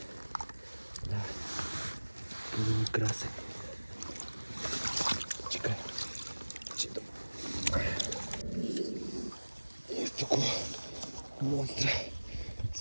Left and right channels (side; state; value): both; inverted; correlation -1.00